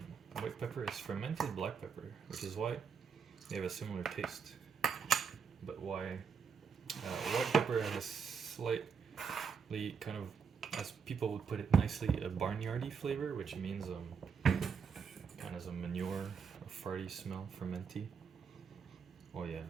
white pepper is fermented black pepper, which is why they have a similar taste. But why white pepper has a slightly kind of as people would put it nicely, a barnyardy flavor, which means kind of a manure, a farty smell, fermenty. Oh yeah,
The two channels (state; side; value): quieter; left; 6.2 dB